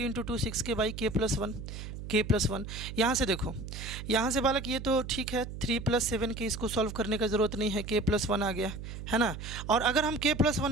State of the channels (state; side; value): noise; right; hum, 9 dB below the sound